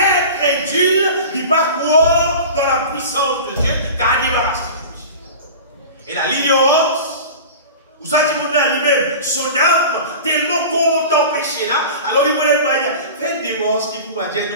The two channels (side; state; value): both; inverted; correlation -0.35